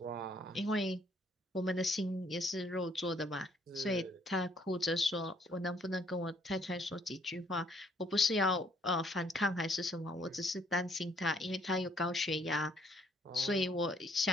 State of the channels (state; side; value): normal; both; correlation 0.66